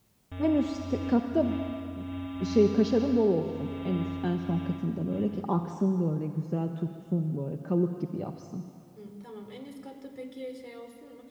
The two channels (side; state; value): both; identical; correlation 1.00